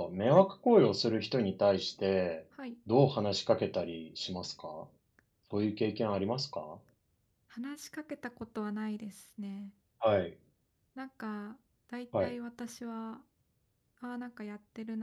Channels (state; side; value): identical; both; correlation 1.00